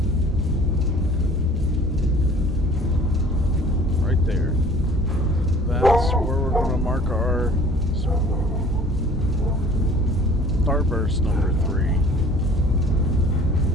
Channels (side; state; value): both; normal; correlation 0.49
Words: Right there. That's where we're going to mark our Starburst number 3.